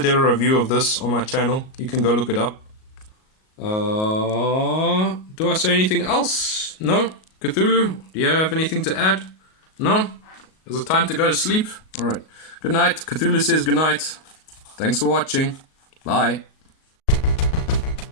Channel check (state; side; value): late; right; 38 ms